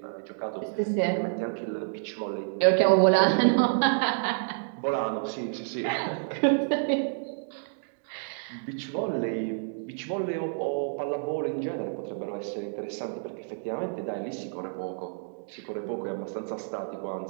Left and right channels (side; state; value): left; silent; digital silence